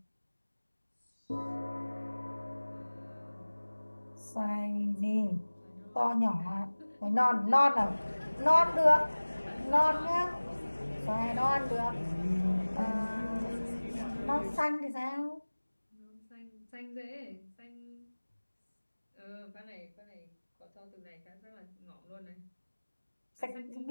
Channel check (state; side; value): inverted; both; correlation -1.00